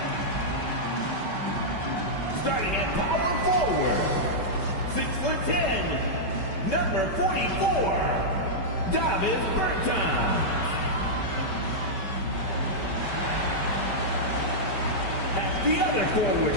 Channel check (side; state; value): right; late; 5.2 ms